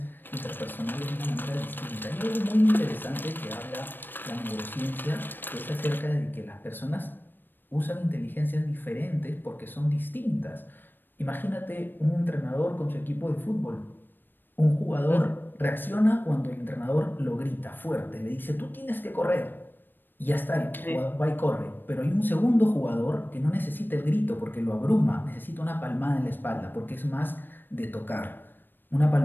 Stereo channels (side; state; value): right; late; 0.094 ms